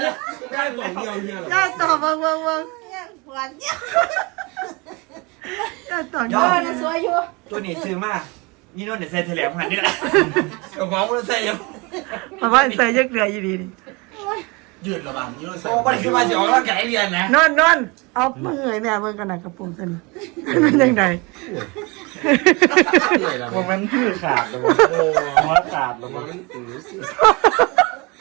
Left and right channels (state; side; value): quieter; left; 27.3 dB